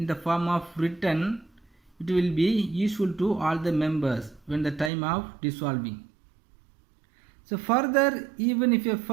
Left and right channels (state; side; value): drops out; left; at 4.9 s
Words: the form of written, it will be useful to all the members when the time of dissolving. So further, even if a